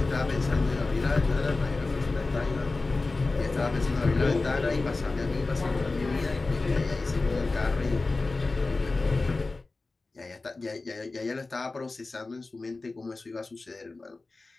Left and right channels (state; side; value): quieter; right; 3.5 dB